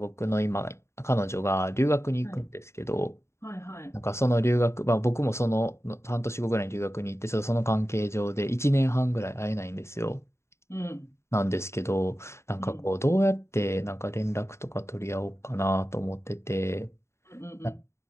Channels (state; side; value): late; right; 0.13 ms